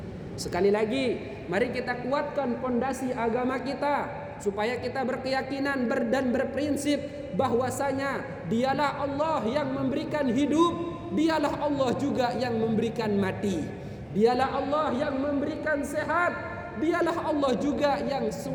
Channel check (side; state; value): both; identical; correlation 1.00